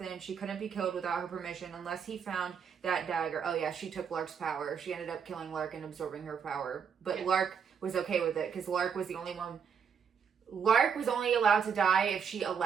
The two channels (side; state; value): left; quieter; 6.9 dB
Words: she couldn't be killed without her permission unless he found that dagger. Oh yeah, she took Lark's power. She ended up killing Lark and absorbing her power. But Lark was okay with it, because Lark was the only one... Lark was only allowed to die if she